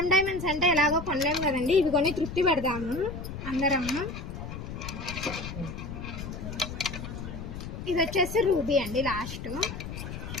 డైమండ్స్ అంటే ఎలాగో కొనలేము కదండి, ఇవి కొని తృప్తి పెడదాము అందరము. ఇది వచ్చేసి రూబీ అండి లాస్ట్.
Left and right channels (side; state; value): left; noise; rumble, 8 dB below the sound